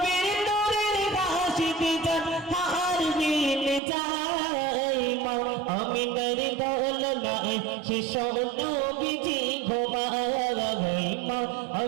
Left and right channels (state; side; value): drops out; left; at 3.8 s